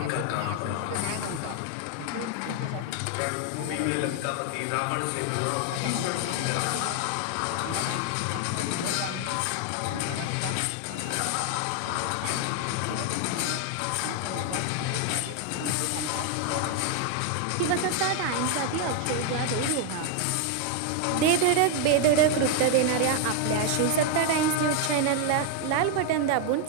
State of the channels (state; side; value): different; both; correlation 0.00